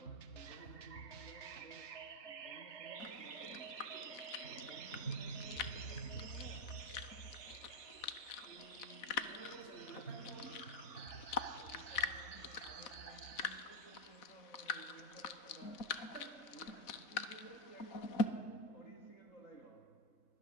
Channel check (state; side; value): late; right; 4.0 ms